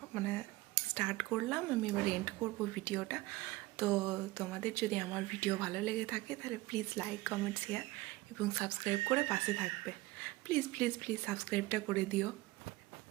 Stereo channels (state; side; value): quieter; left; 19.6 dB